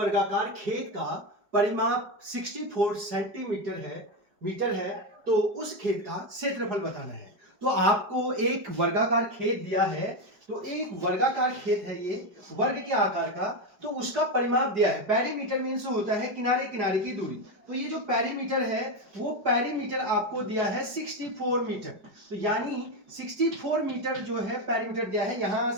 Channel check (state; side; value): late; left; 5.0 ms